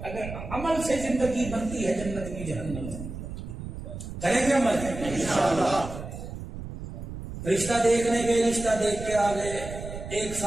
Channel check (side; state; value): right; noise; rumble, 9 dB below the sound